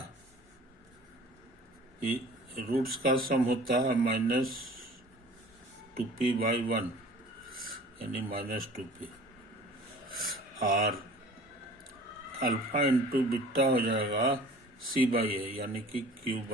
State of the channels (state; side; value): normal; both; correlation 0.46